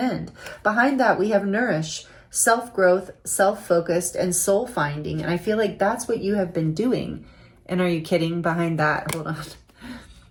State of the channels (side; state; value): both; identical; correlation 1.00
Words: Behind that, we have nourish, self-growth, self-focused, and soul finding. And I feel like that's what you have been doing. And are you kidding? Behind that, hold on.